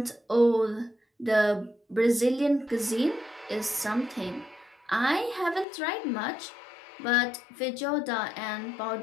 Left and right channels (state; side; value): drops out; right; at 5.7 s